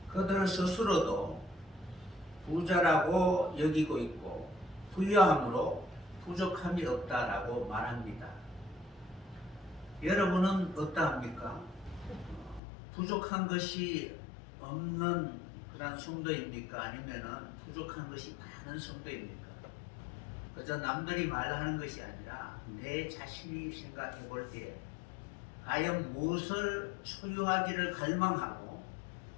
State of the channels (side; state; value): right; drops out; at 12.6 s